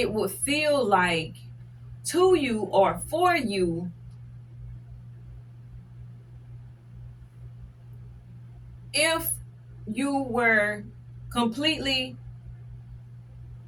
would feel like to you or for you if you were completely,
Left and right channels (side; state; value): both; identical; correlation 1.00